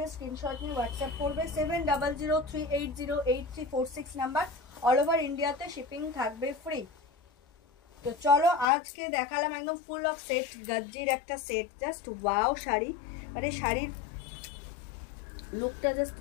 স্ক্রিনশট নিয়ে হোয়াটসঅ্যাপ করবে। 7003808346 নাম্বার। অল ওভার ইন্ডিয়াতে শিপিং থাকবে ফ্রি। তো চলো আজকে দেখালাম একদম ফুল অফ সেট, গাজ্জির একটা সেট, জাস্ট ওয়াও শাড়ি। মানে শাড়ির লুকটা জাস্ট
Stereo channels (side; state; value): right; drops out; at 8.7 s